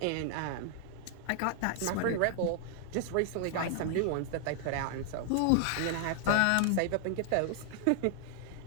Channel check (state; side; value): different; both; correlation -0.01